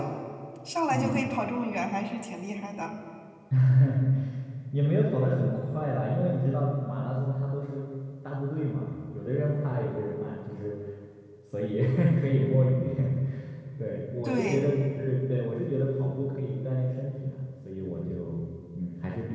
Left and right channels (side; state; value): both; identical; correlation 1.00